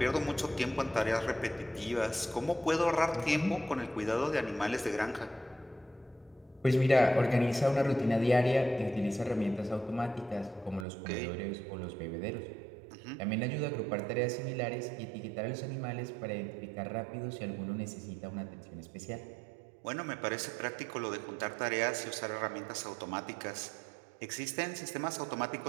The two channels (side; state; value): left; drops out; at 10.9 s